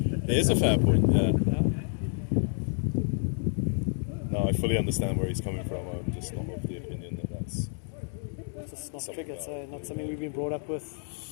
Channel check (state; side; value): silent; right; 58 dB below the other